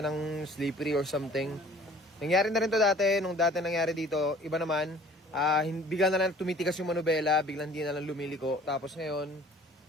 ng slippery or something. Nangyari na rin to dati. Nung dati nangyari dito, iba naman. Bigla na lang tumitikas yung manubela. Biglang hindi na lang lumiliko. Tapos ngayon,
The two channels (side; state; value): both; normal; correlation 0.51